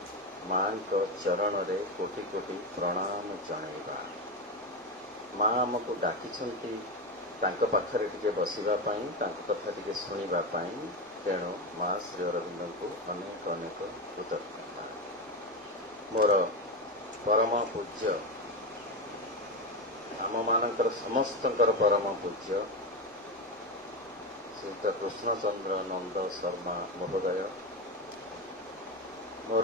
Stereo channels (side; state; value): both; normal; correlation 0.15